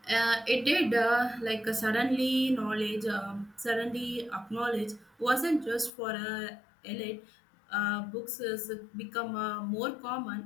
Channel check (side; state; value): right; drops out; at 5.9 s